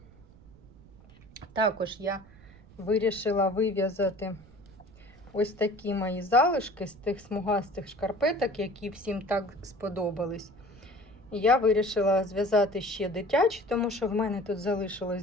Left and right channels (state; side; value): noise; right; rumble, 23 dB below the sound